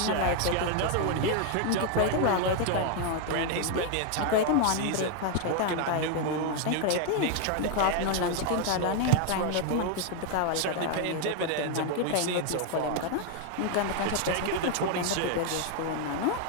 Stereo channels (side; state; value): both; different; correlation 0.01